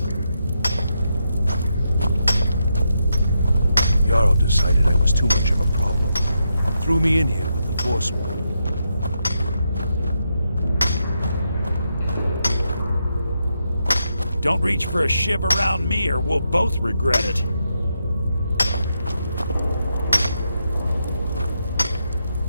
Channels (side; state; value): both; inverted; correlation -0.83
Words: Jarl decided I was too much of a problem. Threw me in here with the Forsworn. Don't reach for a shiv around me or we'll both regret it.